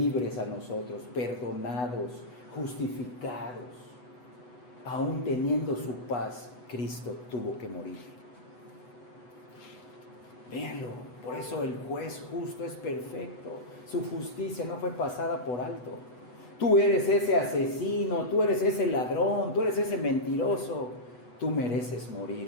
a nosotros, perdonados, justificados, aún teniendo su paz, Cristo tuvo que morir. Véanlo, por eso el juez justo es perfecto. Su justicia no fue pasada por alto. Tú eres ese asesino, tú eres ese ladrón, tú eres ese mentiroso. Tú mereces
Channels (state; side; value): late; right; 8.1 ms